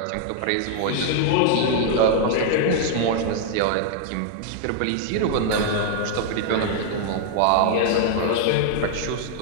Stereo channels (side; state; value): both; different; correlation -0.01